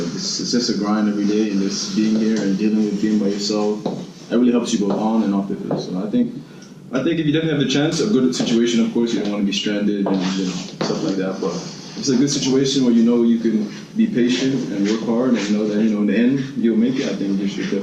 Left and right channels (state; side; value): identical; both; correlation 1.00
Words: it's just a grind every day, and just being here and dealing with being by yourself, that really helps you go on and off the field. So I think if you definitely have the chance, a good situation, of course, you don't want to be stranded and stuff like that, but if it's a good situation where you can be patient and work hard and know that in the end you'll make it, I think you should